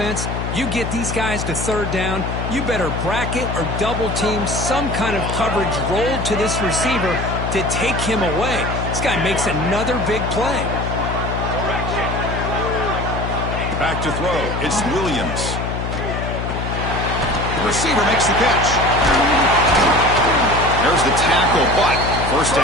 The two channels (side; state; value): left; noise; hum, 3 dB below the sound